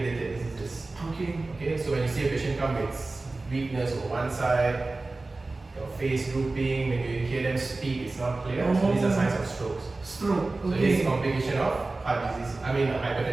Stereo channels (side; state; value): left; quieter; 3.3 dB